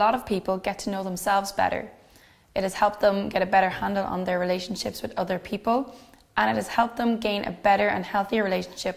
of people get to know themselves better. It has helped them get a better handle on their relationships with other people, and it has helped them gain a better and healthier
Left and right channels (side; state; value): both; identical; correlation 1.00